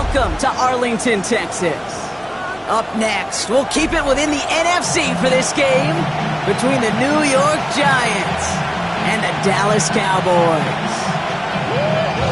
to Arlington, Texas. Up next, we'll keep it within the NFC for this game between the New York Giants and the Dallas Cowboys.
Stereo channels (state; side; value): identical; both; correlation 1.00